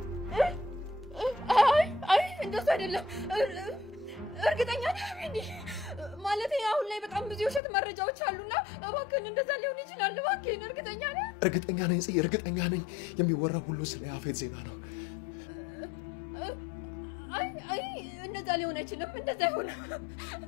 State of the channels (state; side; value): drops out; right; at 7.6 s